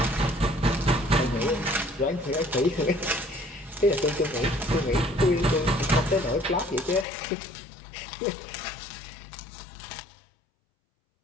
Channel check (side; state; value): right; drops out; at 7.1 s